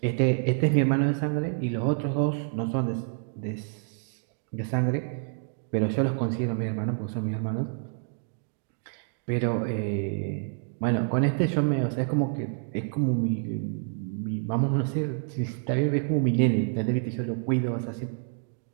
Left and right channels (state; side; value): silent; left; 59 dB below the other